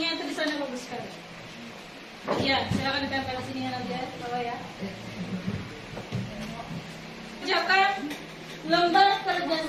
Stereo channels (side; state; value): both; identical; correlation 1.00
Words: itu di sana bagus sekali. Ya, silakan ditempel sini nanti ya, bawah ya. Kerjakan lembar kerja